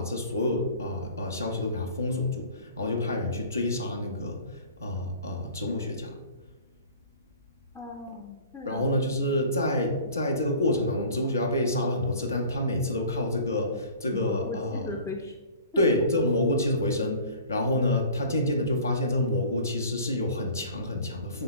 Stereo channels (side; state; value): both; inverted; correlation -0.45